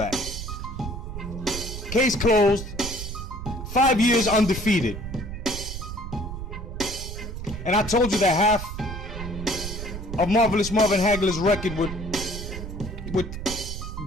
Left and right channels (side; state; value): right; noise; rumble, 8 dB below the sound